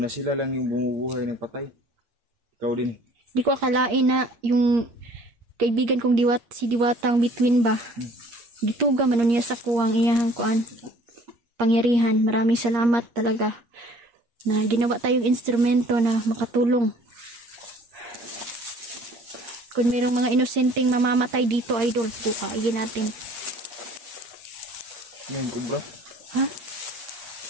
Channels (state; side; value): late; left; 8.6 ms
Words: sila lang yung bumubuhay ng patay. Ikaw din. Di ko akalain na yung kaibigan kong si Diwatang Between ba. Gituga man niya sa kuwang iyahang kuan. kapangyarihan. Maraming salamat talaga na ginawa tayong instrumento na makatulong. Kung mayroong mga inosenteng mamamatay dito, idol, bukayin natin. Ano yung kubra? Ha?